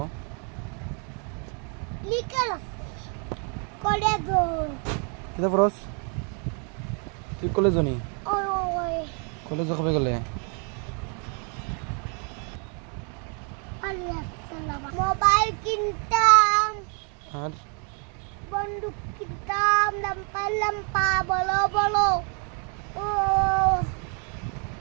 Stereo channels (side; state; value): left; quieter; 38.9 dB